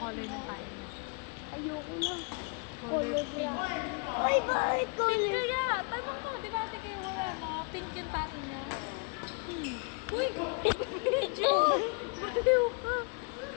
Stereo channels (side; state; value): right; quieter; 32.9 dB